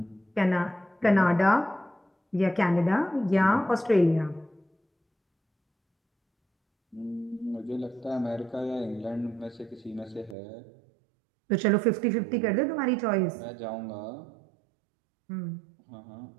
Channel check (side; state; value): left; drops out; at 10.4 s